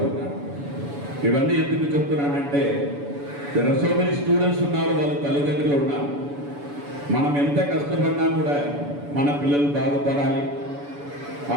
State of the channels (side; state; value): left; late; 7.0 ms